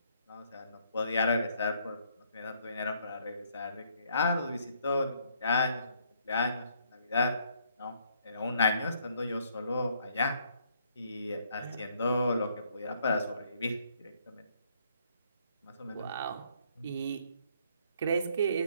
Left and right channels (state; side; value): inverted; both; correlation -0.68